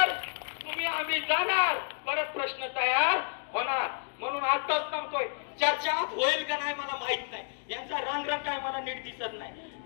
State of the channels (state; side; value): silent; right; 57 dB below the other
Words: तुम्ही आम्ही जाणार, परत प्रश्न तयार होणार. म्हणून आताच सांगतोय, चर्चा होईल का नाही मला माहित नाही, यांचा रंग काय मला नीट दिसत नाही,